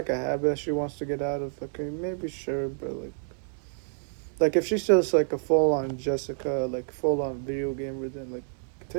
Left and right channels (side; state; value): left; silent; digital silence